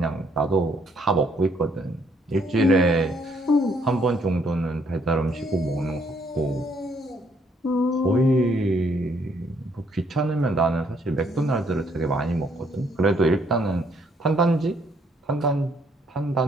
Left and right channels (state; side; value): normal; both; correlation 0.68